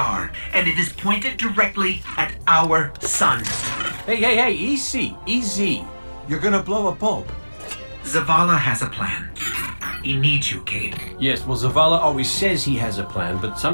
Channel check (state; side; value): inverted; both; correlation -1.00